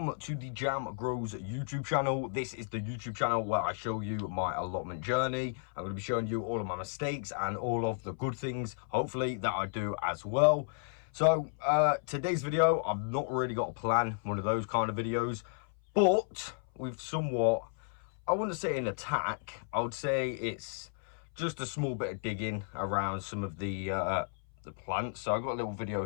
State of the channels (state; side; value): silent; right; 56 dB below the other